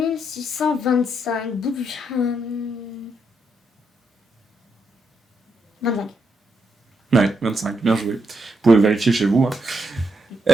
625. 25. Ouais, 25, bien joué. Vous pouvez vérifier chez vous. Hein.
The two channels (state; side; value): normal; both; correlation 0.80